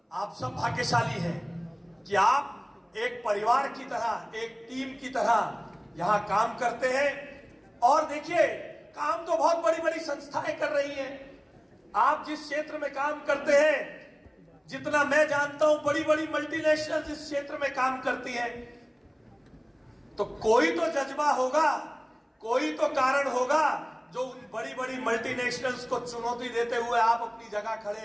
आप सब भाग्यशाली हैं कि आप एक परिवार की तरह, एक टीम की तरह यहां काम करते हैं। और देखिए, काम तो बहुत बड़ी बड़ी संस्थाएं कर रही हैं। आप जिस क्षेत्र में काम करते हैं, जितना मैं जानता हूं, बड़ी बड़ी मल्टीनेशनल इस क्षेत्र में काम करती हैं। तो कोई तो जज्बा होगा, कोई तो कारण होगा जो उन बड़ी बड़ी मल्टीनेशनल्स को चुनौती देते हुए आप अपनी जगह खड़े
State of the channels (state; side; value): identical; both; correlation 1.00